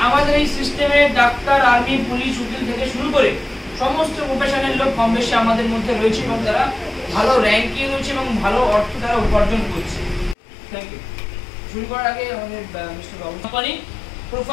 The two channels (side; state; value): right; drops out; at 10.4 s